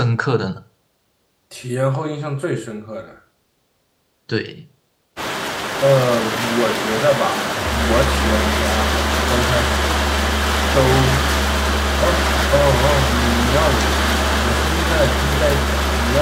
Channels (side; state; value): both; identical; correlation 1.00